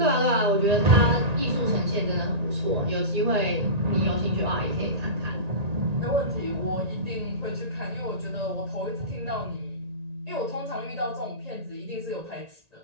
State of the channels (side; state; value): left; late; 1.9 ms